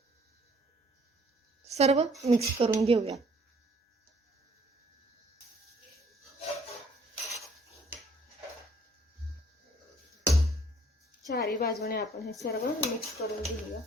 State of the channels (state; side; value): normal; both; correlation 0.60